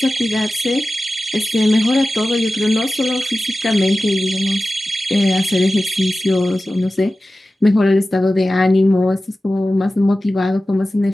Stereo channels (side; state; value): both; normal; correlation 0.95